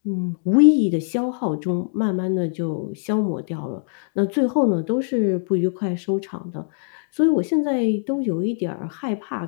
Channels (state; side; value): silent; right; digital silence